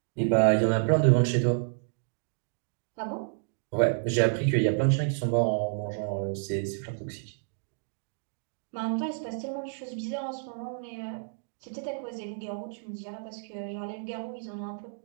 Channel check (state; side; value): silent; left; digital silence